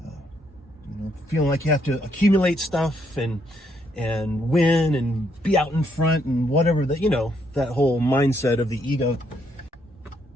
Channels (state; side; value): normal; both; correlation 0.74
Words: feeling like you have to accumulate stuff and win and be out in front and whatever, that whole mindset of the ego,